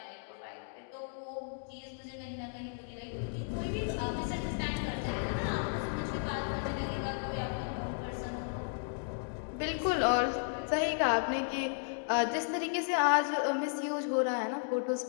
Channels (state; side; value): silent; right; digital silence